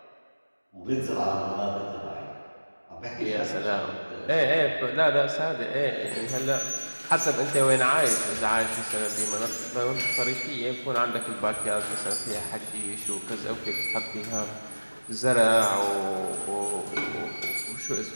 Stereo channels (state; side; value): inverted; both; correlation -1.00